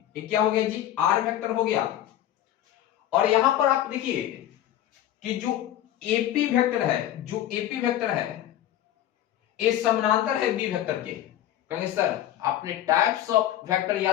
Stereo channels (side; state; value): right; quieter; 12.4 dB